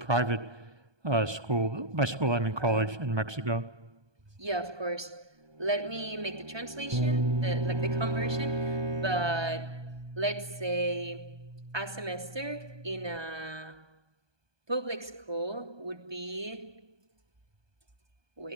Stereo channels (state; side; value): late; left; 1.2 ms